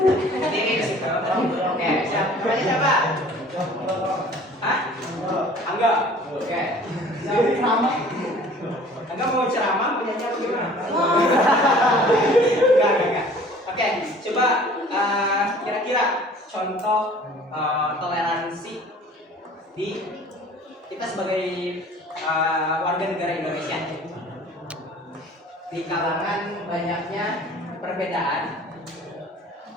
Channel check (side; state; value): both; normal; correlation 0.49